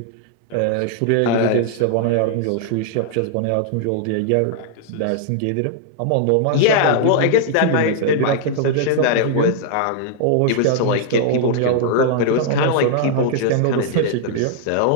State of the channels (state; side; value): different; both; correlation -0.01